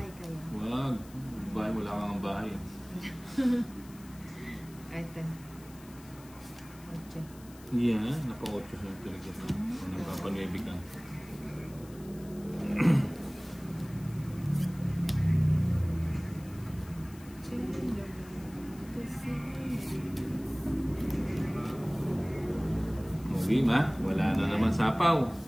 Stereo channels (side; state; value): left; noise; hiss, 22 dB below the sound